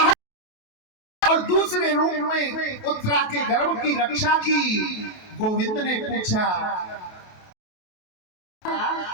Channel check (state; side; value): late; right; 28 ms